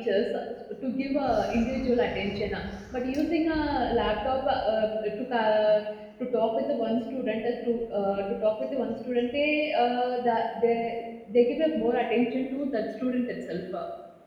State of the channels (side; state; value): both; identical; correlation 1.00